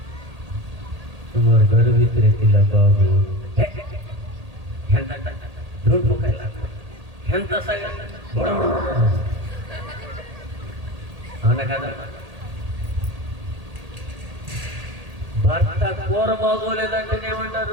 तुम्हारे घर भीतर तिला बाबू ఎంత రోడ్ ముఖాయిలా ఎంత సగ అవునా కదా? భర్త కూర బాగోలేదంటే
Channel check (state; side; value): late; left; 1.8 ms